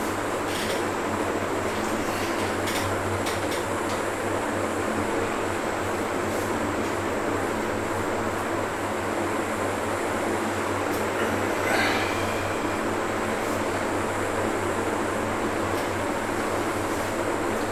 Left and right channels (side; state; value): both; identical; correlation 1.00